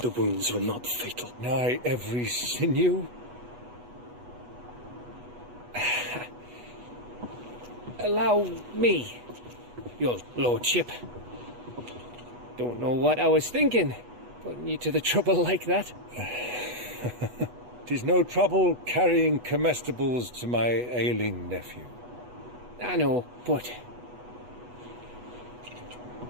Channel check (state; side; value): late; left; 8.2 ms